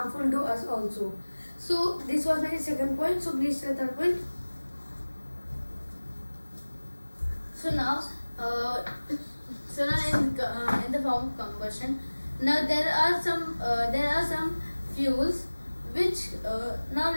to us also. So this was my second point. So please say the third point. So now in the form of combustion, now there are some fuels which now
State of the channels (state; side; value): inverted; both; correlation -1.00